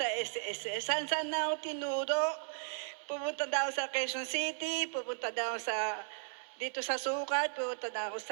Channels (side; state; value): left; silent; digital silence